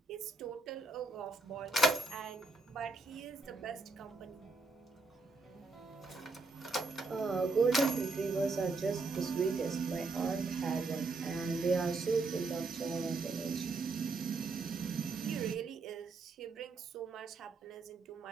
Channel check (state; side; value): quieter; left; 3.6 dB